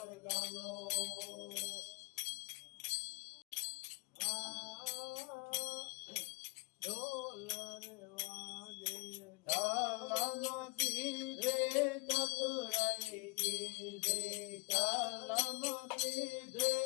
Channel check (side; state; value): right; quieter; 27.1 dB